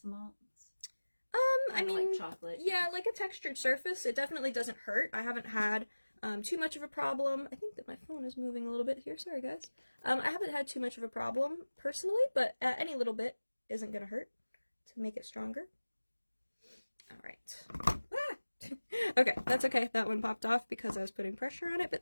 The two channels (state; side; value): inverted; both; correlation -1.00